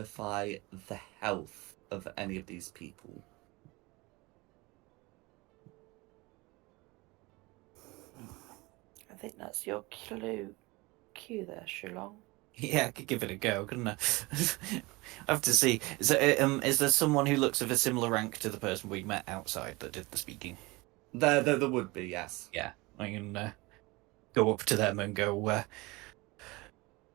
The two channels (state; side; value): quieter; left; 23.5 dB